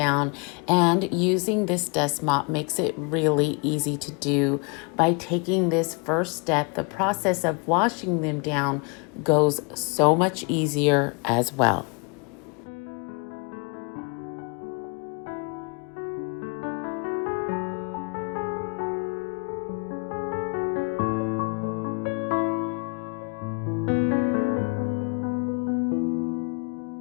and using this dust mop makes it really easy to do. By taking this first step, the process of washing them down goes so much easier as well.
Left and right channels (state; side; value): quieter; right; 32.9 dB